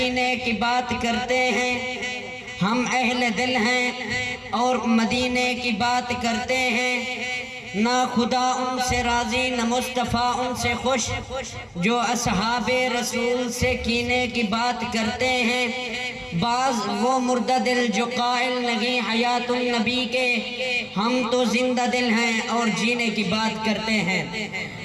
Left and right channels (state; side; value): identical; both; correlation 1.00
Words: نے کی بات کرتے ہیں، ہم اہل دل ہیں اور مدینے کی بات کرتے ہیں، نہ خدا ان سے راضی نہ مصطفیٰ ان سے خوش، جو اصحاب رسول سے کینے کی بات کرتے ہیں۔ بعض وہ مردہ دل جو قائل نہیں حیات النبی کے، ہم تو زندہ دل ہیں اور جینے کی بات کرتے ہیں۔